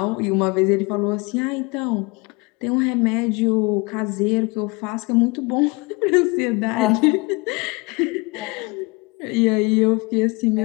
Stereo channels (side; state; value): right; quieter; 26.6 dB